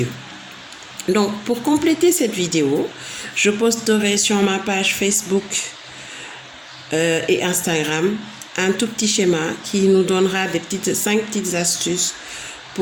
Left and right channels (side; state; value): both; identical; correlation 1.00